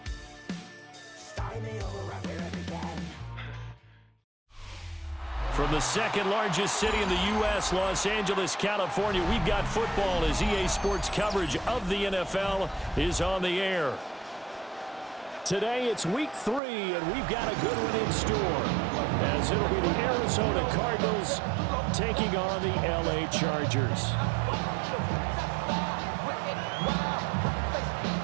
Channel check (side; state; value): left; drops out; at 16.6 s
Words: Starting me over right where it began. From the second largest city in the U.S., Los Angeles, California, we've got football as EA Sports coverage of the NFL is on the air. Today it's week 3, and we've got a good one in store, as it'll be the Arizona Cardinals taking on the L.A. Chargers.